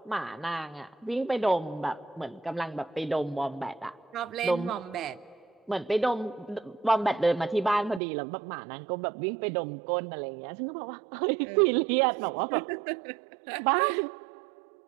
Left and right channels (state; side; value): drops out; left; at 8.0 s